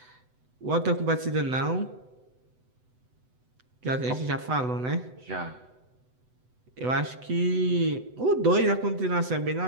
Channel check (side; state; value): left; late; 8.0 ms